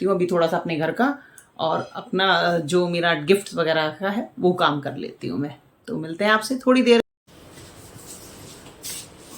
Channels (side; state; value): both; identical; correlation 1.00